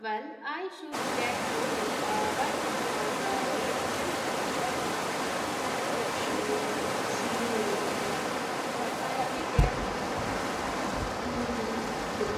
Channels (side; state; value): both; identical; correlation 1.00